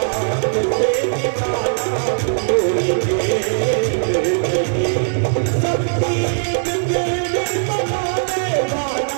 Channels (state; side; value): silent; left; digital silence